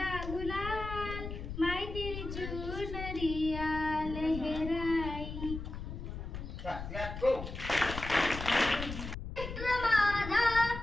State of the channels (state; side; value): noise; left; rumble, 8 dB below the sound